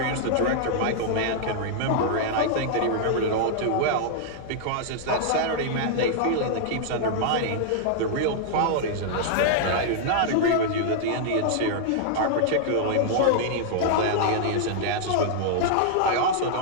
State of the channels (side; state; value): both; different; correlation -0.01